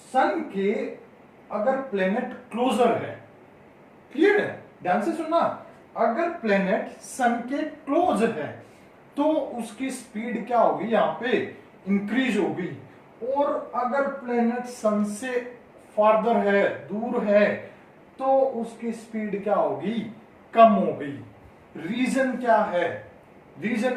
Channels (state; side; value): identical; both; correlation 1.00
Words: सन के अगर प्लेनेट क्लोजर है, क्लियर है, ध्यान से सुनना, अगर प्लेनेट सन के क्लोज है तो उसकी स्पीड क्या होगी, यहां पे इंक्रीज होगी, और अगर प्लेनेट सन से फार्दर है, दूर है, तो उसकी स्पीड क्या होगी, कम होगी। रीजन क्या है,